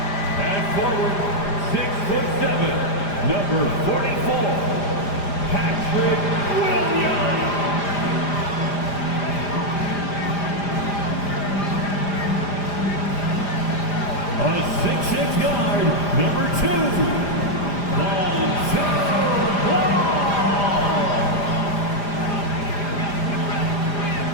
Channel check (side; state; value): right; late; 5.0 ms